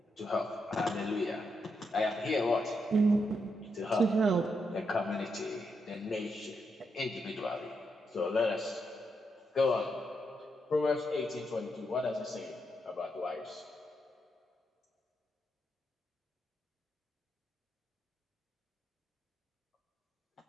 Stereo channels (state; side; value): normal; both; correlation 0.82